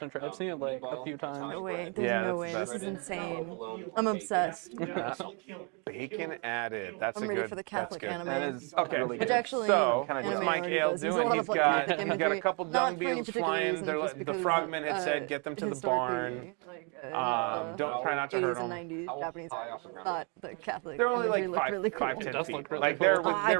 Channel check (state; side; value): quieter; left; 35.6 dB